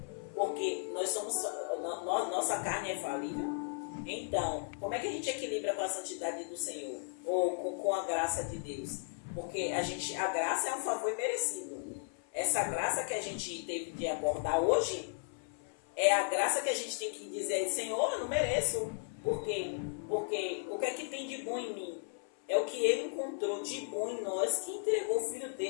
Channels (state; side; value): silent; right; 54 dB below the other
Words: porque nossa carne é falível. Então, como é que a gente equilibra com a santidade do Senhor? Ou com a graça de Deus? Porque a graça é um favor imerecido. Essa graça que a gente teve de abordar hoje é a graça que a gente tem que dizer: Senhor, eu não mereço. Por quê? Porque o que é que tem de bom em mim? É o que Ele encontrou de bom em nós, que entregou o Filho